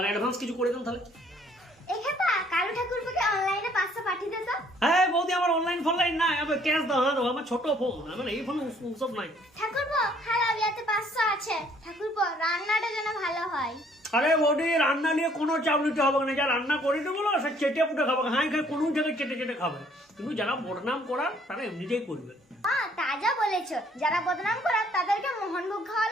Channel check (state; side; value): normal; both; correlation 0.62